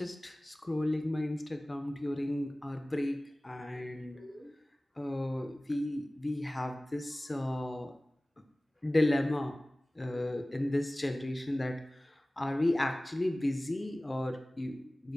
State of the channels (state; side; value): normal; both; correlation 0.98